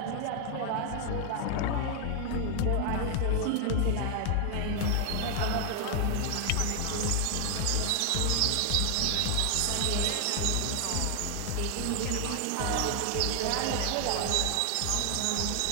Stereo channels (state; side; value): different; both; correlation 0.00